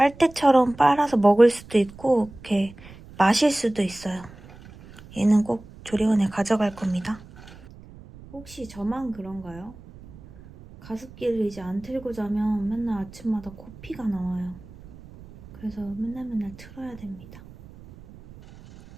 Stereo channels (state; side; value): noise; right; rumble, 19 dB below the sound